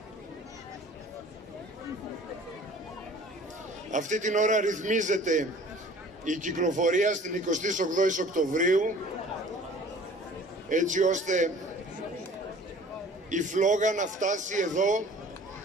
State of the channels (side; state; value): both; normal; correlation 0.48